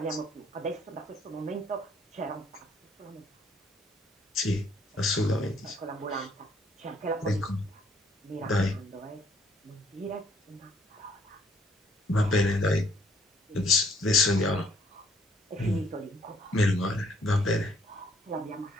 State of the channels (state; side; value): normal; both; correlation 0.65